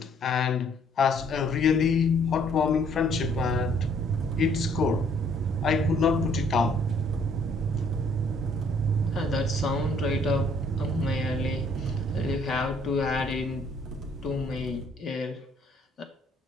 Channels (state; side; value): normal; both; correlation 0.63